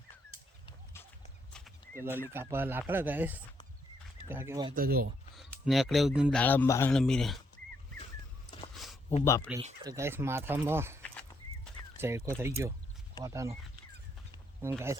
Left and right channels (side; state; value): both; normal; correlation 0.75